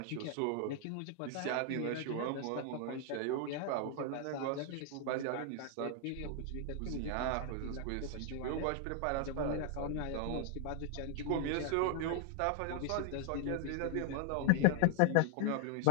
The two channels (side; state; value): both; different; correlation 0.00